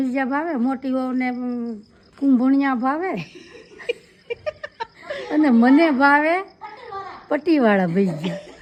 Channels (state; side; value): identical; both; correlation 1.00